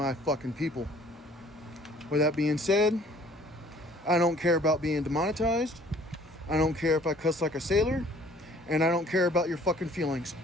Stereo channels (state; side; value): normal; both; correlation 0.55